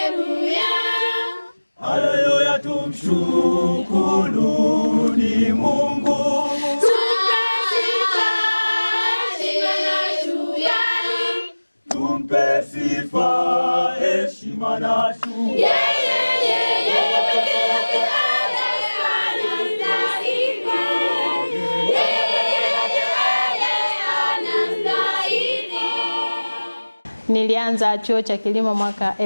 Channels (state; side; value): inverted; both; correlation -1.00